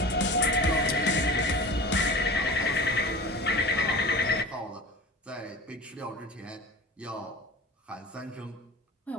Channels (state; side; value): normal; both; correlation 0.36